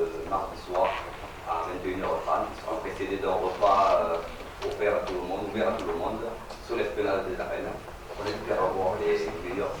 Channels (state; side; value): identical; both; correlation 1.00